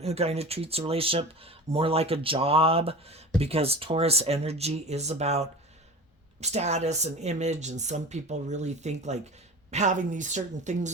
who kind of treats a relationship more like a job, because Taurus energy is about status and image, and some people really think like having these certain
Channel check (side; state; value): both; normal; correlation 0.33